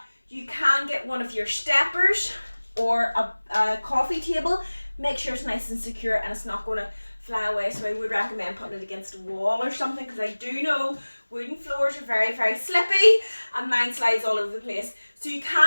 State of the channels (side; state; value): both; inverted; correlation -1.00